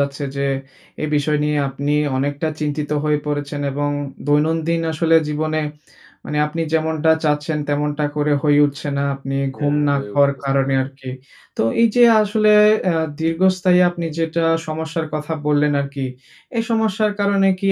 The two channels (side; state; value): both; identical; correlation 1.00